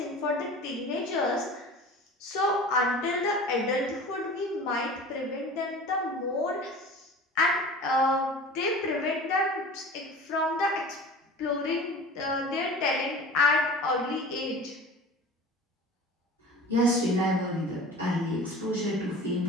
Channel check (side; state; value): both; normal; correlation 0.38